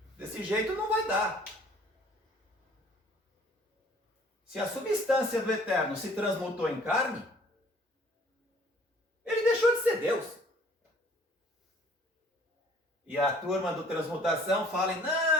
Desse jeito não vai dar. Se a substância do eterno se transmutou em carne, ele deixou de ser Deus. E a turma do transmutação fala,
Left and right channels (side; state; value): both; normal; correlation 0.55